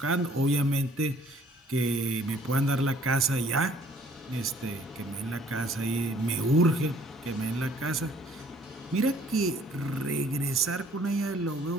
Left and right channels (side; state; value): both; normal; correlation 0.58